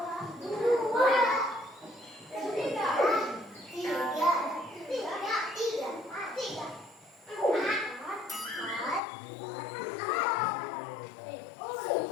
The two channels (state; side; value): drops out; right; at 9.0 s